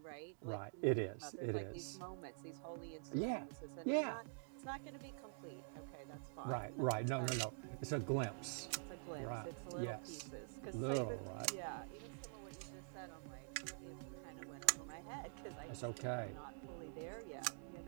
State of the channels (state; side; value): silent; left; digital silence